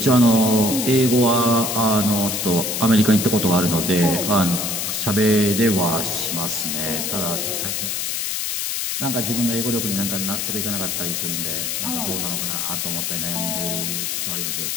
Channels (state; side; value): noise; left; hiss, 1 dB below the sound